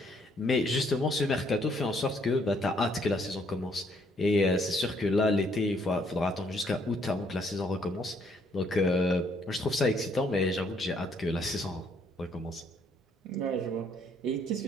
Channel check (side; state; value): both; normal; correlation 0.67